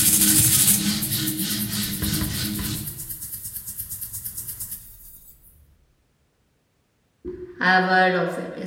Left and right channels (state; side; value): identical; both; correlation 1.00